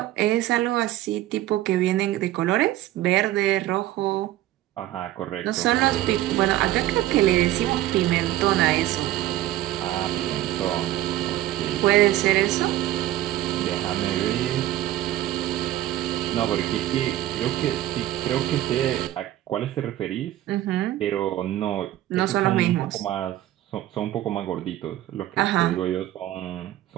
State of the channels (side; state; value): left; quieter; 14.1 dB